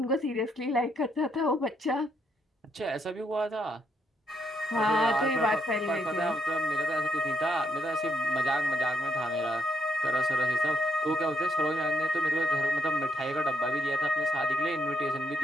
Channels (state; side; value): normal; both; correlation 0.75